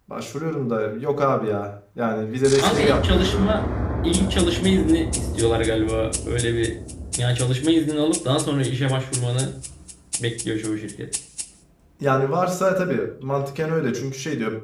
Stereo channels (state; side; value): identical; both; correlation 1.00